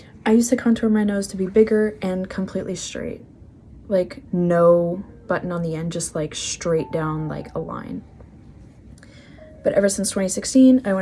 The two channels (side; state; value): both; identical; correlation 1.00